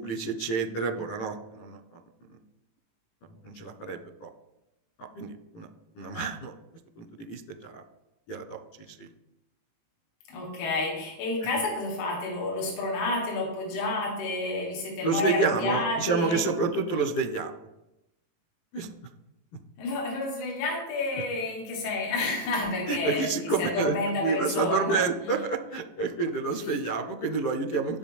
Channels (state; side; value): late; right; 18 ms